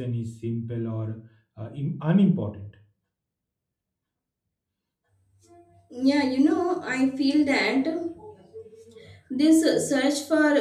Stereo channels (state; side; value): identical; both; correlation 1.00